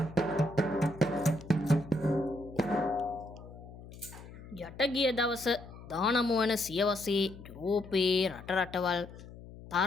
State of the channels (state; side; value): noise; left; hum, 16 dB below the sound